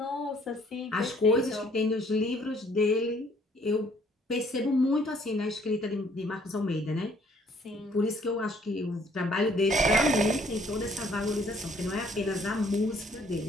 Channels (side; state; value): both; normal; correlation 0.62